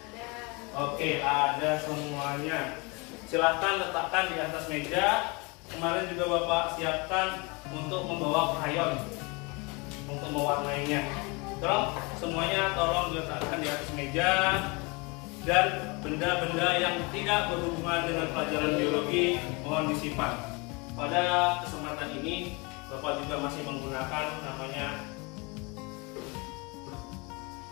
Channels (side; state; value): right; quieter; 28.5 dB